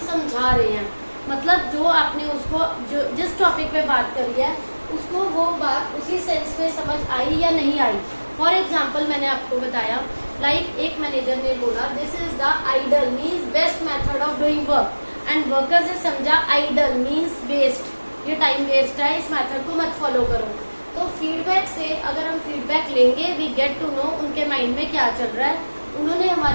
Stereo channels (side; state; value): both; inverted; correlation -1.00